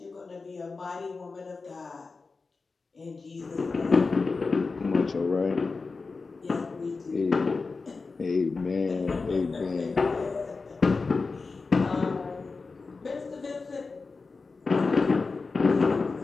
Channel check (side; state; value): right; quieter; 4.2 dB